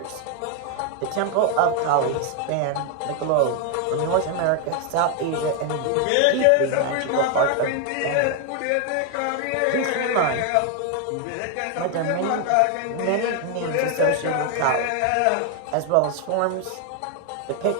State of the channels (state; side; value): different; both; correlation 0.01